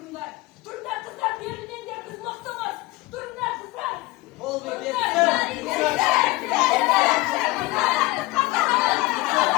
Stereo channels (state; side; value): quieter; right; 20.6 dB